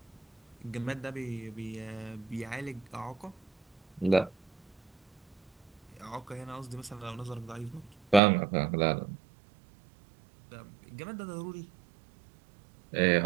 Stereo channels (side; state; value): left; drops out; at 8.2 s